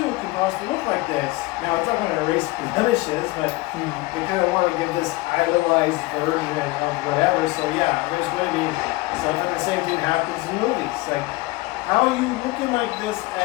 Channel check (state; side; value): quieter; right; 21.3 dB